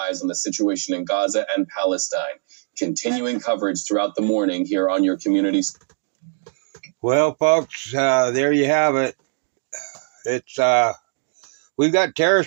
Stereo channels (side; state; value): left; silent; digital silence